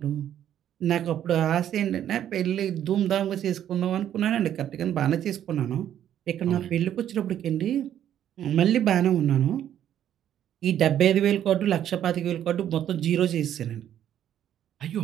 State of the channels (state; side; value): quieter; left; 10.6 dB